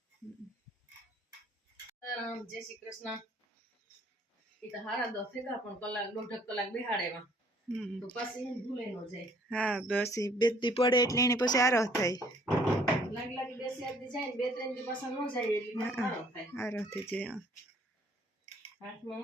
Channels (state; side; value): normal; both; correlation 0.60